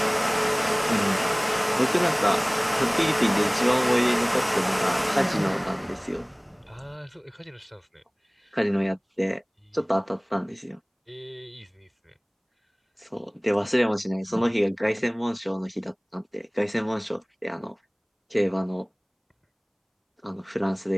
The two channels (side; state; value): both; identical; correlation 1.00